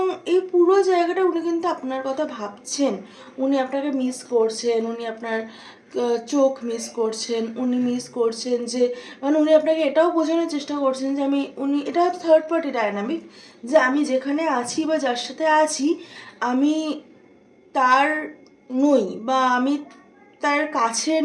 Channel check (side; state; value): both; identical; correlation 1.00